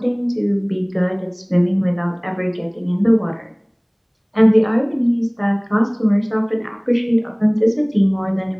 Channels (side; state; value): both; identical; correlation 1.00